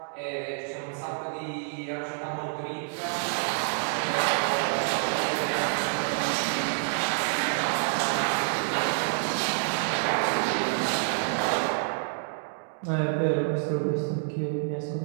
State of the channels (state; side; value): silent; left; 59 dB below the other